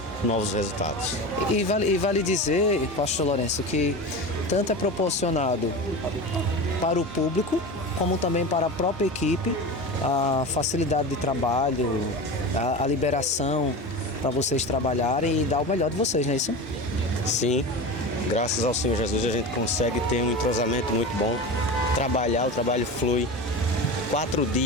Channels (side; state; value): both; normal; correlation 0.27